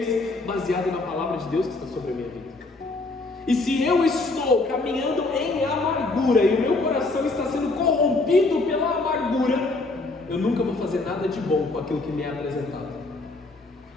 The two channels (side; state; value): right; quieter; 3.3 dB